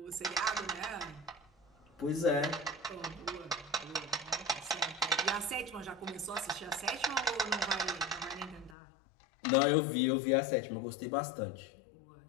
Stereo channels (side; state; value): right; drops out; at 8.8 s